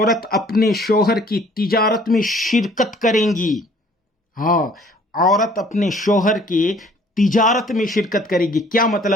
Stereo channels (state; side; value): normal; both; correlation 0.56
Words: اپنے شوہر کی تجارت میں شرکت کریں گی. ہاں، عورت اپنے شوہر کی تجارت میں شرکت کرے گی. کیا